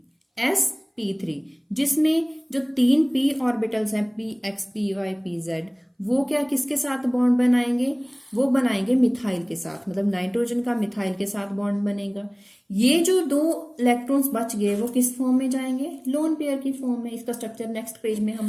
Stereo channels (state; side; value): identical; both; correlation 1.00